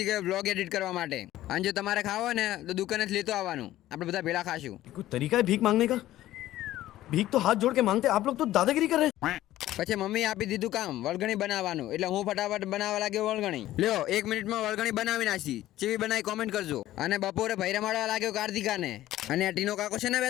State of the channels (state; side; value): quieter; right; 14.5 dB